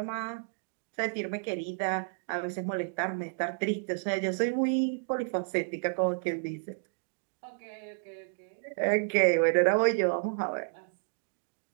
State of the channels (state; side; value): silent; left; digital silence